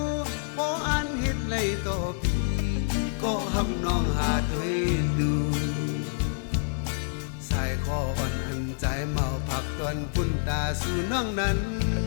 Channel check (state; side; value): silent; right; 60 dB below the other